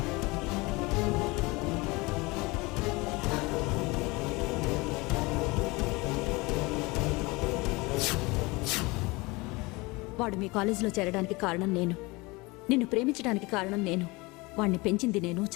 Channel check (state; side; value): quieter; right; 24.2 dB